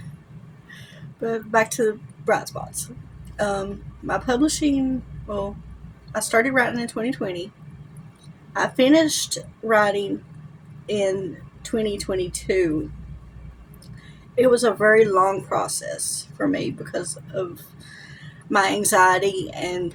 But back to Bright Spots. My publishing, well, I started writing in 2020. I finished writing in 2022. It was a very long process for me because of my anxiety and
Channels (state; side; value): identical; both; correlation 1.00